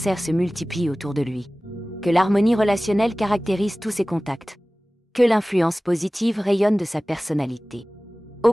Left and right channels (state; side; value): normal; both; correlation 0.98